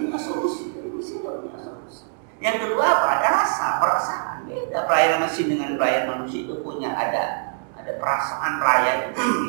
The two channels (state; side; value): silent; left; digital silence